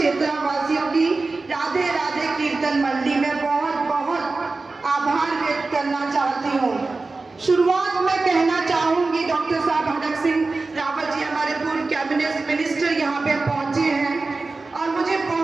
की राधे राधे कीर्तन मंडली में बहुत बहुत आभार व्यक्त करना चाहती हूँ। शुरुआत में कहना चाहूंगी डॉक्टर साहब हरक सिंह रावत जी हमारे पूर्व कैबिनेट मिनिस्टर यहाँ पे पहुंचे हैं और मुझे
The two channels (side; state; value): left; quieter; 3.7 dB